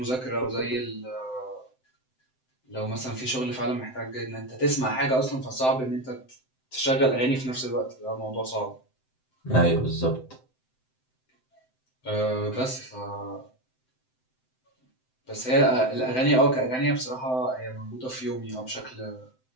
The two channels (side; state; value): right; late; 7.8 ms